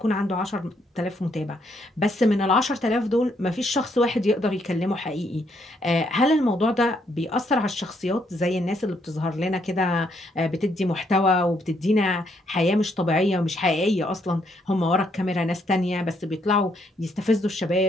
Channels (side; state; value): both; normal; correlation 0.73